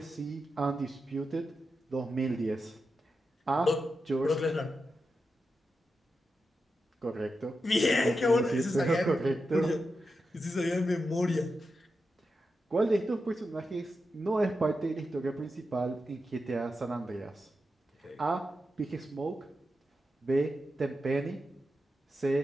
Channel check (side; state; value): both; normal; correlation 0.89